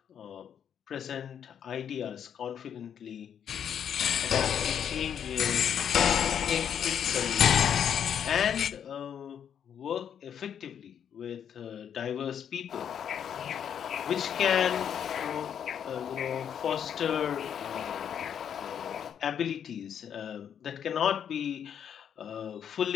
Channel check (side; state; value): right; quieter; 8.6 dB